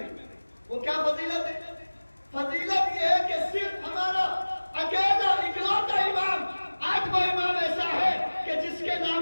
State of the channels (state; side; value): inverted; both; correlation -1.00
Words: وہ کیا فضیلت ہے؟ فضیلت یہ ہے کہ صرف ہمارا اکیلا اکلوتا امام، 8واں امام ایسا ہے کہ جس کے